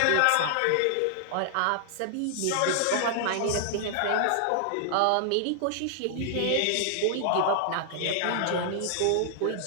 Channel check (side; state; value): both; different; correlation -0.01